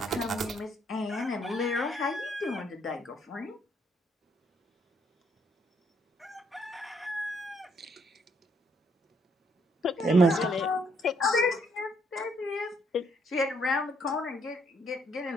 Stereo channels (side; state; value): both; normal; correlation 0.70